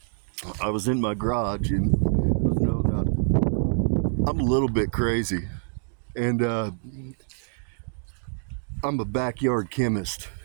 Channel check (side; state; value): left; silent; digital silence